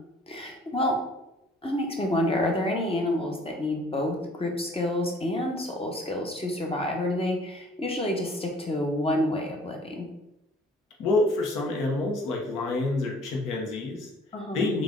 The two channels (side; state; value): both; normal; correlation 0.55